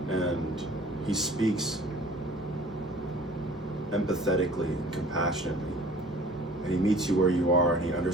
and he speaks empathetically, compassionately, and he meets you where you are, and he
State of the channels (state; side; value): normal; both; correlation 0.49